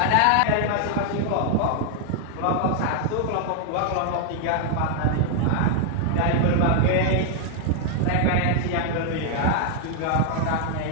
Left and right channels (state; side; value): different; both; correlation 0.00